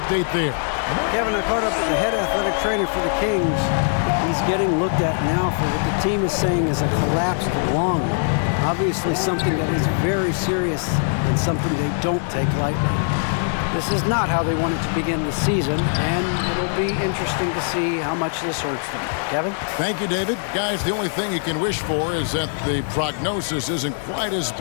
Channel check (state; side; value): silent; right; 64 dB below the other